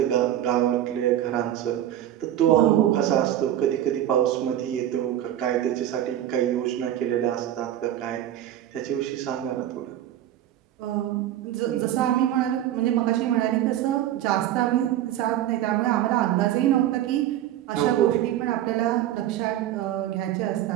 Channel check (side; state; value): left; quieter; 12.2 dB